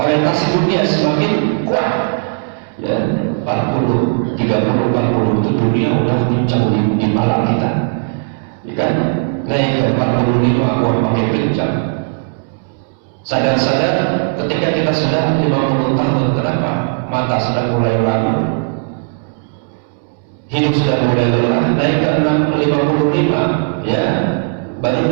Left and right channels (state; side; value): silent; left; digital silence